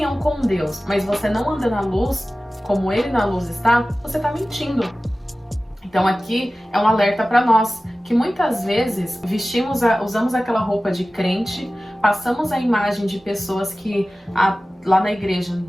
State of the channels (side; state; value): both; normal; correlation 0.96